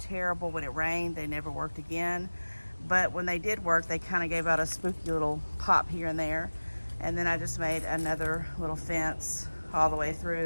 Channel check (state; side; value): inverted; both; correlation -1.00